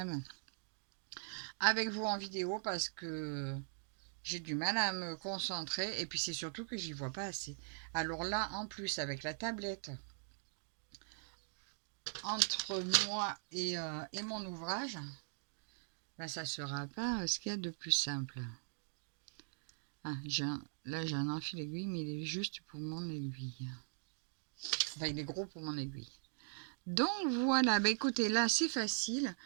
avec vous en vidéo parce que j'ai du mal à me concentrer et puis c'est surtout que j'y vois pas assez. Alors là, en plus, avec la tablette entre moi et mon ouvrage, ben, ça sera pas ce qu'il y a de plus simple. Ah, là, j'ai un enfil aiguille, mais il est juste pour mon aiguille. Enfin, il est gros pour mon aiguille. Donc voilà, bah écoutez, là c'est facile.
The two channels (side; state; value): left; silent; digital silence